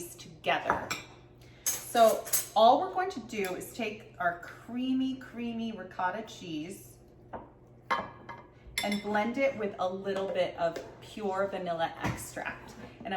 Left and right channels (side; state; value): both; identical; correlation 1.00